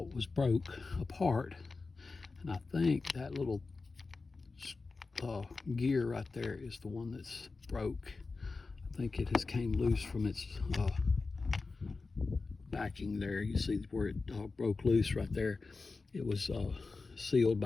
was broke apart, and I think that little gear right there is the one that's broke. I think it has came loose from its backing there. You see where it broke loose right there. It was sealed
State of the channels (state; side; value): quieter; right; 4.0 dB